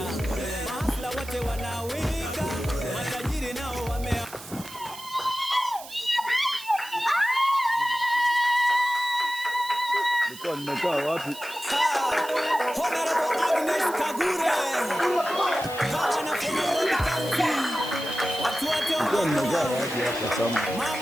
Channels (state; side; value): noise; right; hiss, 15 dB below the sound